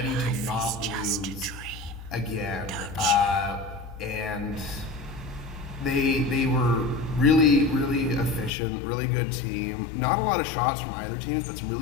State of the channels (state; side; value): drops out; right; at 8.5 s